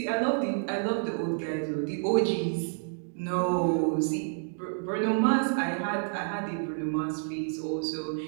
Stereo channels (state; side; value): silent; left; digital silence